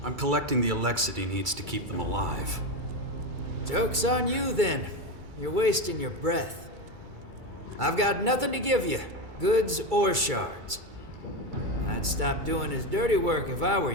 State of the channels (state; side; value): late; left; 2.3 ms